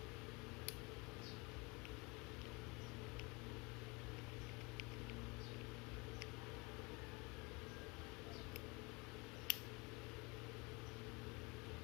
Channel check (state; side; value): quieter; right; 27.4 dB